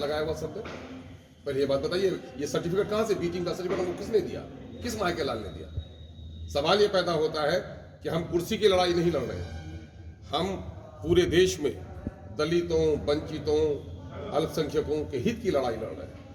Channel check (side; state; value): both; identical; correlation 1.00